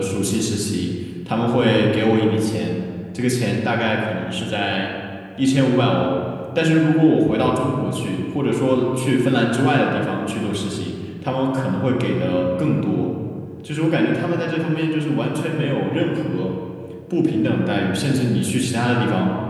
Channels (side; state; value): both; identical; correlation 1.00